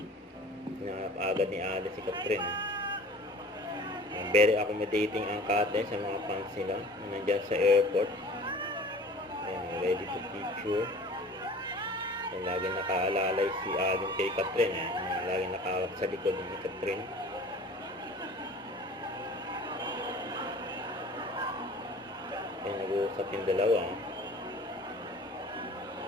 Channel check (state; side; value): normal; both; correlation 0.44